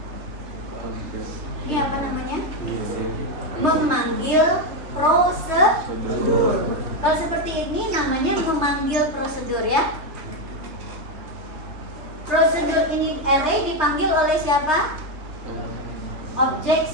Ini apa namanya? Memanggil prosedur. Kalau seperti ini namanya memanggil prosedur, ya. Prosedur ini array dipanggil oleh siapa? Objek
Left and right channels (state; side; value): late; left; 3.3 ms